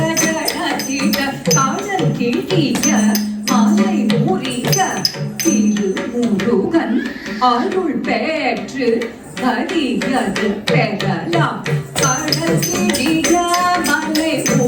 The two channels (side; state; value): both; identical; correlation 1.00